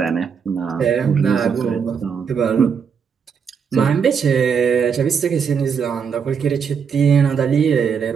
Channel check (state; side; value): quieter; left; 6.6 dB